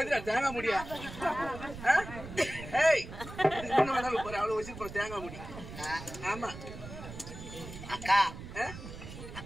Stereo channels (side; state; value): right; noise; rumble, 12 dB below the sound